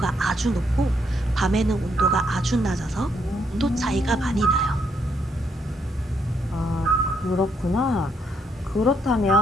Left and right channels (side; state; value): both; normal; correlation 0.74